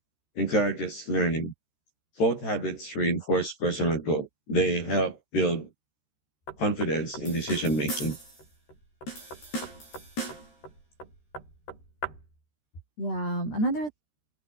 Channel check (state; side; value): late; right; 13 ms